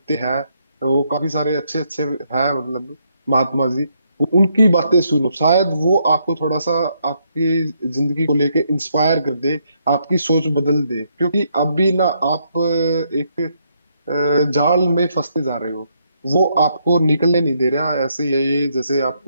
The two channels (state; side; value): inverted; both; correlation -0.75